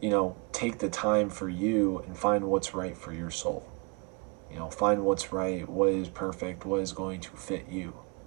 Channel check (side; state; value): left; quieter; 30.8 dB